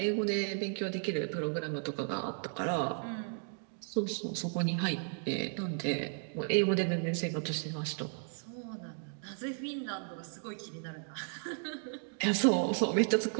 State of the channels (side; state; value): left; silent; 55 dB below the other